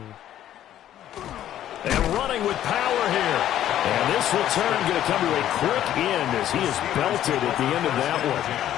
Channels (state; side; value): quieter; right; 11.8 dB